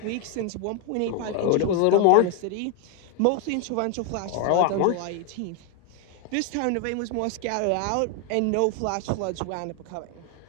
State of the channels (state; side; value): different; both; correlation 0.01